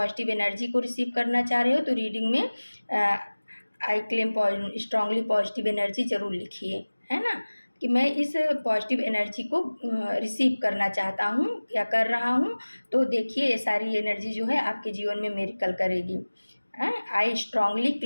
एनर्जी को रिसीव करना चाह रहे हो, तो रीडिंग में I claim strongly positive energy ज़रूर लिखिए, है ना, कि मैं इस पॉजिटिव एनर्जी को रिसीव करना चाहता हूँ या कर रहा हूँ। तो देखिए ये सारी एनर्जी जो है आपके जीवन में मिरेकल करेगी। I strongly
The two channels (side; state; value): both; inverted; correlation -1.00